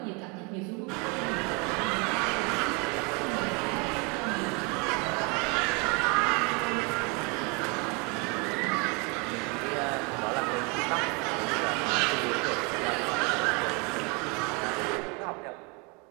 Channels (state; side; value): quieter; left; 31.1 dB